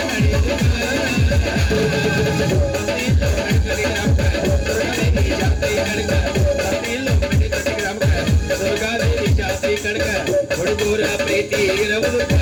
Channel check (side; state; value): both; identical; correlation 1.00